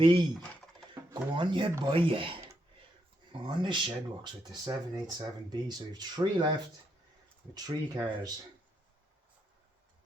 Go on, you buy it. On the Shedworks with the 787B. So you have 3 left with 3 cars.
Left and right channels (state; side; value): normal; both; correlation 0.79